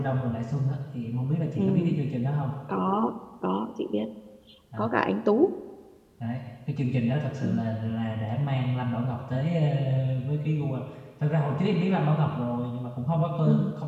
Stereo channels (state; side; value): identical; both; correlation 1.00